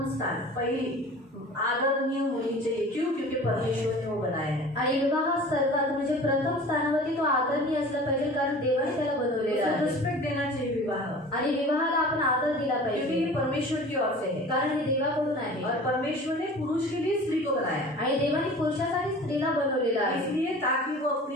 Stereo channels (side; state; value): both; normal; correlation 0.41